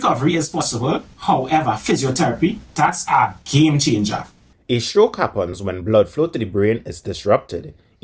is possible. However, physiotherapy, that's a game changer. A stroke happens when blood flow to the brain is disrupted,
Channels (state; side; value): identical; both; correlation 1.00